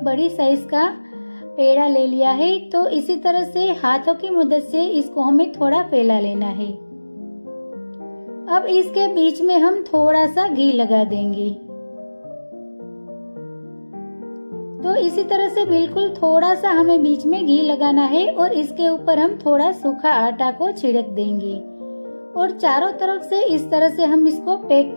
बड़ी साइज का पेड़ा ले लिया है। तो इसी तरह से हाथों की मदद से इसको हमें थोड़ा फैला लेना है। अब इसके बीच में हम थोड़ा सा घी लगा देंगे। तो इसी तरह से बिल्कुल थोड़ा सा हमें बीच में घी लगाना है और इसके ऊपर हम थोड़ा सूखा आटा को छिड़क देंगे और चारों तरफ से इस तरह से हम इसको पैक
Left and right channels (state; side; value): inverted; both; correlation -1.00